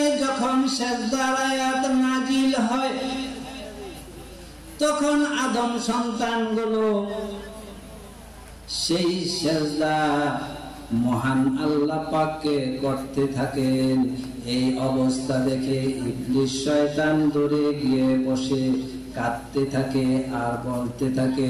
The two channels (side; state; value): both; identical; correlation 1.00